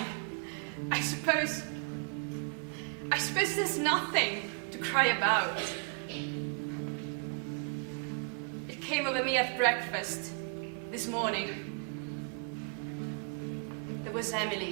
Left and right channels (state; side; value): quieter; left; 39.4 dB